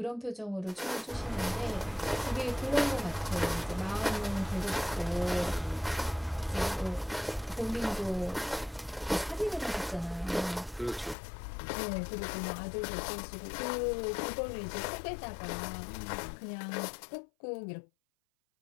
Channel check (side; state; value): right; drops out; at 11.2 s